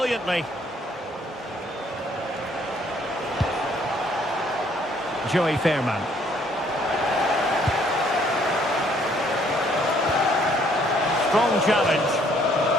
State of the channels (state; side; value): normal; both; correlation 0.64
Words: Joey Fairman. Strong challenge.